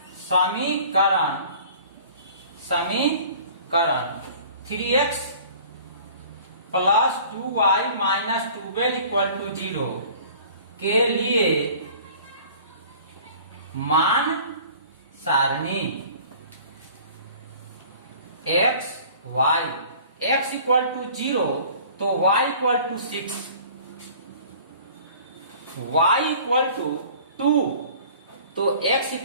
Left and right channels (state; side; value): inverted; both; correlation -0.48